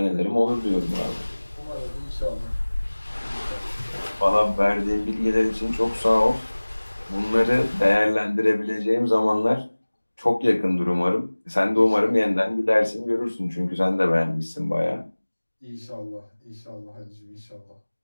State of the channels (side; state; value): both; inverted; correlation -1.00